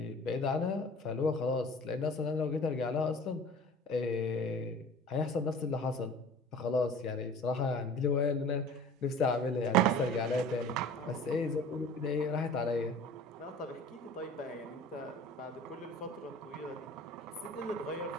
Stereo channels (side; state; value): both; normal; correlation 0.43